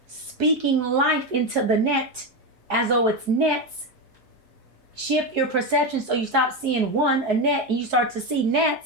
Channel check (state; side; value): normal; both; correlation 0.12